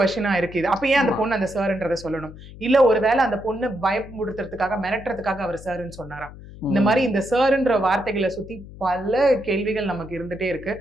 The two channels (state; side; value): noise; left; hum, 16 dB below the sound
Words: இருக்கு இது. அப்ப ஏன் அந்த பொண்ணு அந்த சார்ன்றதை சொல்லணும்? இல்ல ஒருவேளை அந்த பொண்ணு பயமுடுத்துறதுக்காக, மிரட்டுறதுக்காக அவர் சார்ன்னு சொன்னாரா? இந்த மாதிரி இந்த சார்ன்ற வார்த்தைகளை சுத்தி பல கேள்விகள் நமக்கு இருந்துட்டே இருக்கு.